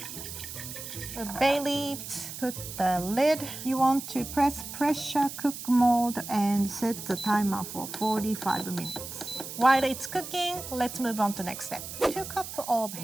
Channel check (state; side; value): noise; right; hiss, 10 dB below the sound